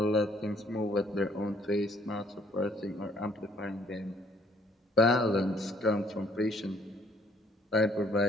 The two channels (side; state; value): both; normal; correlation 0.62